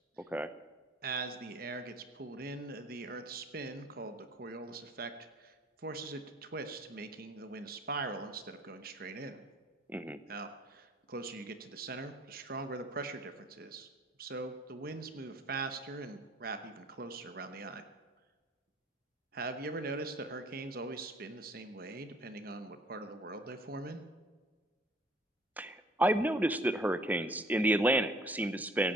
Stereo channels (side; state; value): both; normal; correlation 0.56